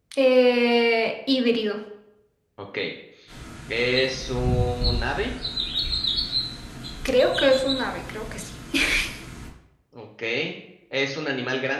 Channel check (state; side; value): identical; both; correlation 1.00